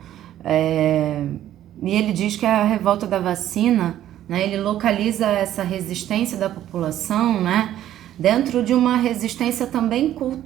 e ele diz que a revolta da vacina, né, ele localiza essa resistência da população, né, dentro de uma resistência também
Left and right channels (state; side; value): quieter; left; 12.2 dB